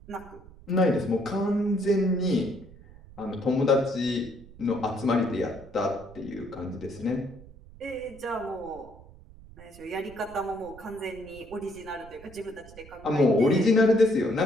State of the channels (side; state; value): right; noise; rumble, 20 dB below the sound